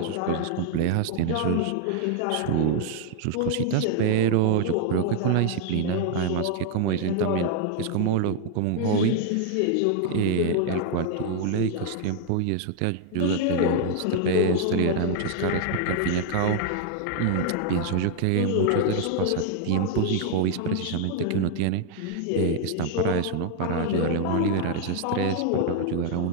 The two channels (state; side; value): different; both; correlation 0.00